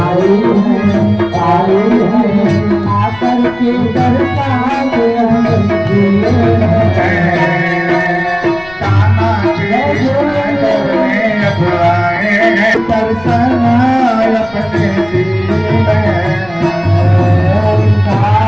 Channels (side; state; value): left; noise; rumble, 22 dB below the sound